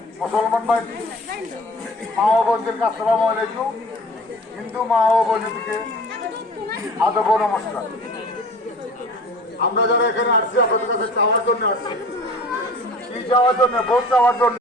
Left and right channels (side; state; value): both; normal; correlation 0.43